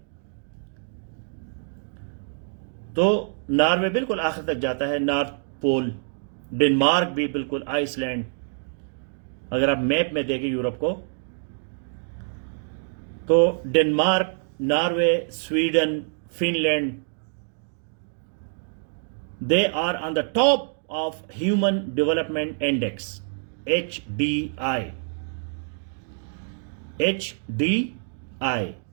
تو ناروے بالکل آخر تک جاتا ہے، نارتھ پول. ڈنمارک بھی بالکل، آئس لینڈ. اگر آپ میپ میں دیکھیں یورپ کو تو Denmark, Norway, Sweden, Finland, they are on the top of human development index HDI.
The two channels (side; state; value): left; silent; digital silence